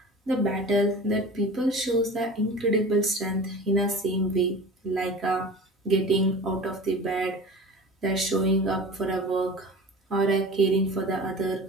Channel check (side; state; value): both; normal; correlation 0.37